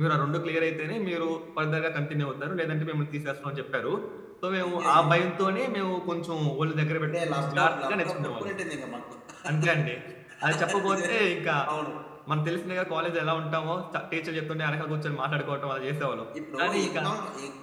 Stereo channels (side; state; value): both; identical; correlation 1.00